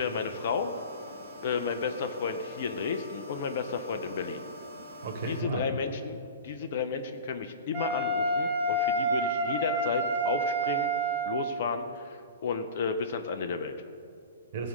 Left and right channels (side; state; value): both; inverted; correlation -0.34